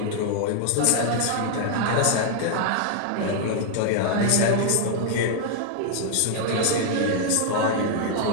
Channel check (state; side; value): different; both; correlation 0.00